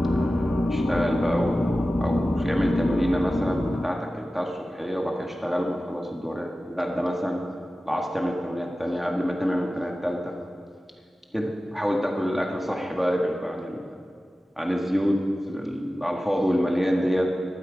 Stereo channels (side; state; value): both; normal; correlation 0.95